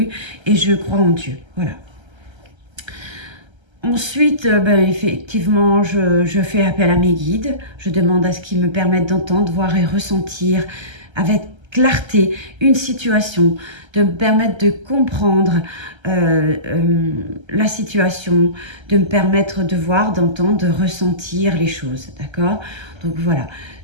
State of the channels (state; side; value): late; left; 1.3 ms